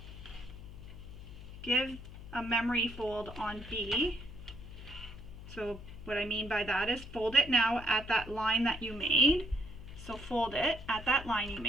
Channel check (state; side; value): noise; left; hum, 14 dB below the sound